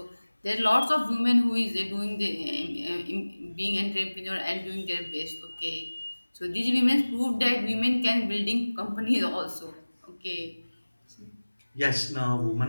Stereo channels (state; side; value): inverted; both; correlation -1.00